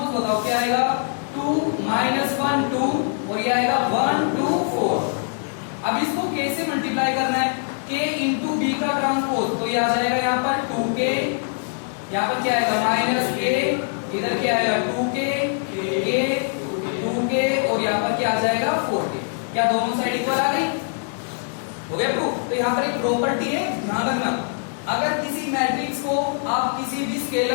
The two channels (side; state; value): right; silent; 62 dB below the other